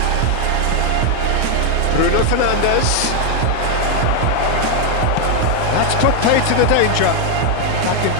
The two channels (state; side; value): different; both; correlation 0.01